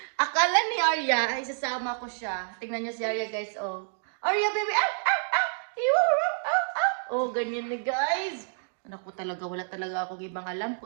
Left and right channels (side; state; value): left; silent; digital silence